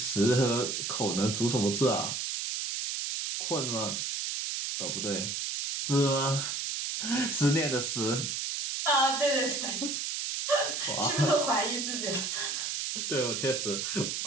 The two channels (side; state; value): right; noise; hiss, 2 dB below the sound